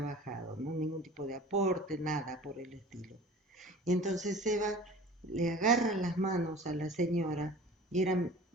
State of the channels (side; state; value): both; normal; correlation 0.42